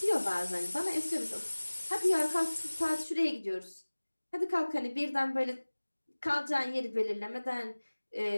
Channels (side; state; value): both; inverted; correlation -1.00